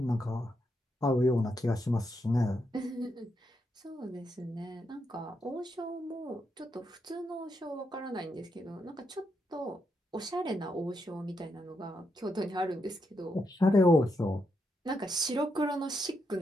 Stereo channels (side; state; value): both; normal; correlation 0.81